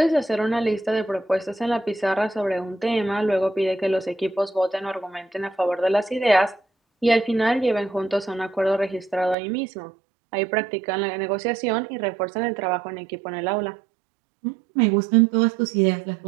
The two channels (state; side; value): drops out; left; at 9.3 s